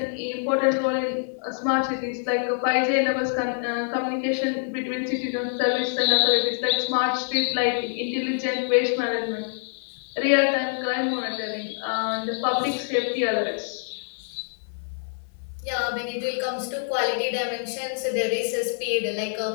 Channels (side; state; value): right; silent; 56 dB below the other